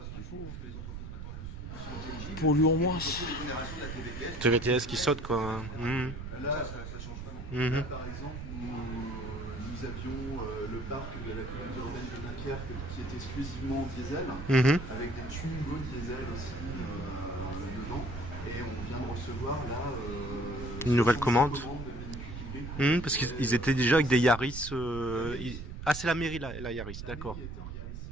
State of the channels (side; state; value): right; noise; rumble, 8 dB below the sound